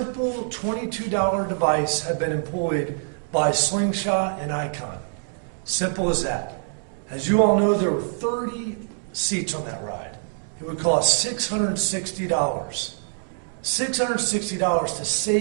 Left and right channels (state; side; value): silent; left; 62 dB below the other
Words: $22 device had been employed by Slingshot and Icon. Simple as that. As you all know, there were 30 seats on that ride. It would cost $660. $660 to